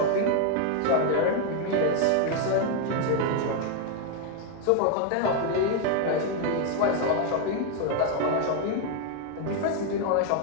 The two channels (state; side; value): different; both; correlation 0.01